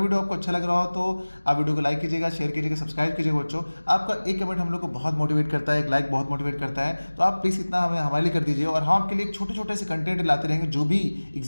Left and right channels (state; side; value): inverted; both; correlation -1.00